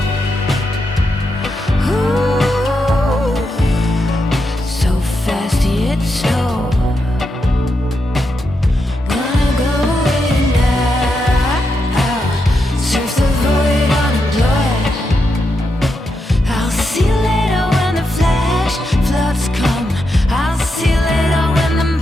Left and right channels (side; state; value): both; normal; correlation 0.84